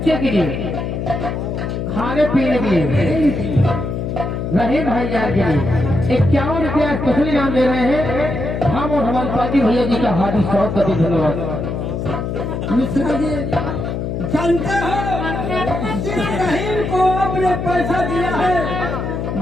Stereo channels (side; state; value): left; noise; hum, 3 dB below the sound